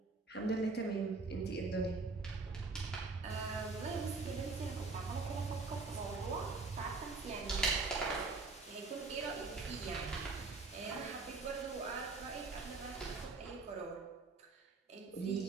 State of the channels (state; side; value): quieter; left; 3.9 dB